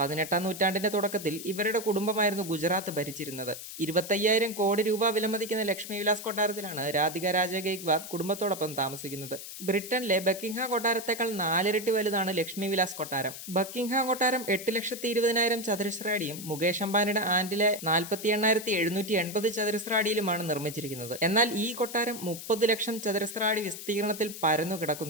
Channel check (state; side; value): noise; left; hiss, 11 dB below the sound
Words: 18-ാം നൂറ്റാണ്ടിന്റെ തുടക്കത്തിൽ ഇവരുടെ കുടുംബമായിരുന്നു ഗുജറാത്ത് ഭരിച്ചിരുന്നത്. 25,000 കോടി രൂപ വിലമതിക്കുന്ന ലക്ഷ്മി വിലാസ് കൊട്ടാരത്തിലാണ് രാധിക രാജെ ഗെയ്ക്വാദ് കുടുംബത്തോടൊപ്പം താമസിക്കുന്നത്. ബ്രിട്ടനിലെ ബക്കിംഗ്ഹാം കൊട്ടാരത്തേക്കാൾ 4 ഇരട്ടി വലുതാണ് ലക്ഷ്മി വിലാസ് കൊട്ടാരം. ബക്കിംഗ്ഹാം കൊട്ടാരം 8,20,000 ചതുരശ്ര അടിയും മുകേഷ് അംബാനിയുടെ ആന്റിലെ 48,780 ചതുരശ്ര അടിയിലുമാണ് നിർമ്മിച്ചിരിക്കുന്നത്. എന്നാൽ ഈ കൊട്ടാരം 30 ലക്ഷം ചതുരശ്ര അടി വിസ്തീർണത്തിൽ പരന്നു